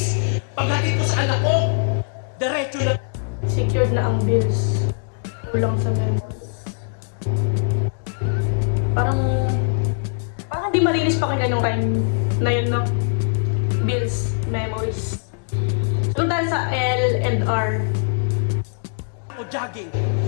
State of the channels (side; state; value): right; silent; digital silence